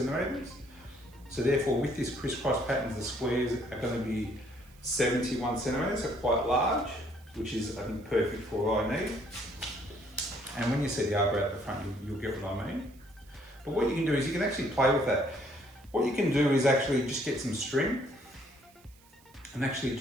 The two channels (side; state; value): right; noise; hiss, 28 dB below the sound